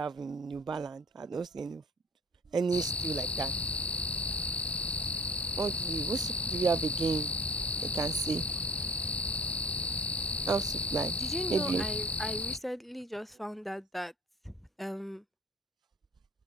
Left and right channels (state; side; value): normal; both; correlation 0.45